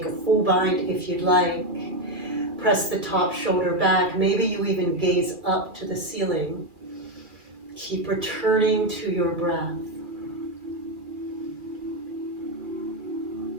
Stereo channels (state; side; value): late; left; 2.4 ms